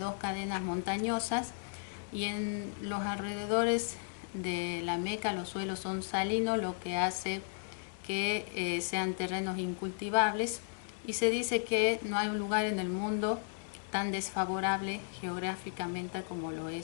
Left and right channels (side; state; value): right; silent; digital silence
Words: dos cadenas montañosas, y en los alrededores de la Meca los suelos son salinos, lo que hace que sean terrenos incultivables, y se dice que no hay un lugar en el mundo tan desfavorable geográficamente como lo